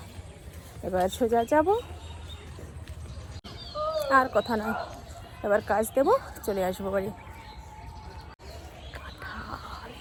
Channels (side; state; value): both; identical; correlation 1.00